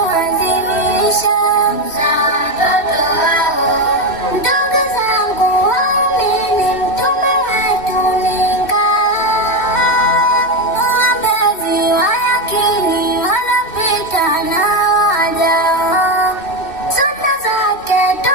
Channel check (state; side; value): late; right; 2.6 ms